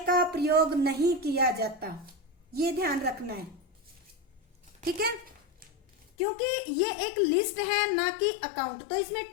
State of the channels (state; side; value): drops out; right; at 6.1 s